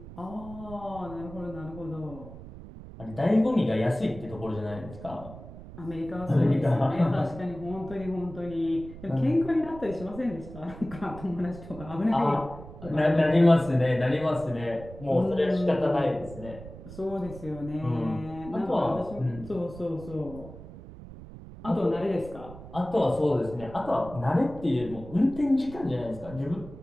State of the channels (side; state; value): right; noise; rumble, 15 dB below the sound